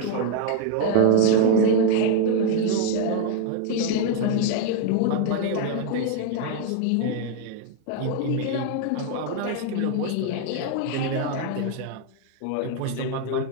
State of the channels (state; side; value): different; both; correlation 0.01